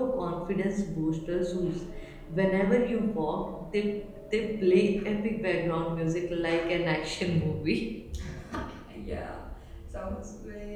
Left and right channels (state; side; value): identical; both; correlation 1.00